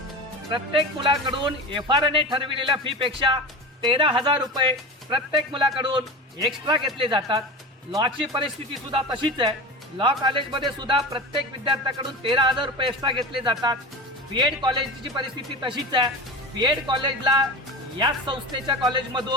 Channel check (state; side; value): normal; both; correlation 0.29